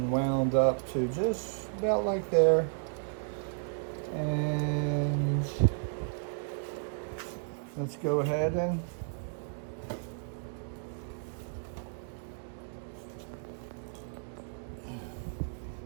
wound up to just about like there. And let's go ahead and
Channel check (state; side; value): silent; left; digital silence